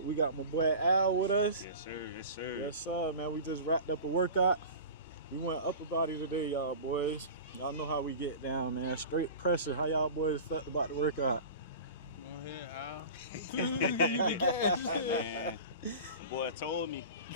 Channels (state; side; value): inverted; both; correlation -0.35